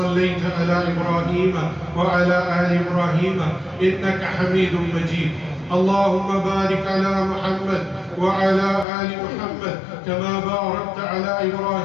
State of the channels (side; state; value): right; drops out; at 8.8 s